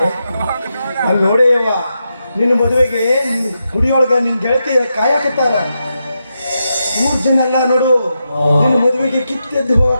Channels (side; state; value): both; inverted; correlation -0.86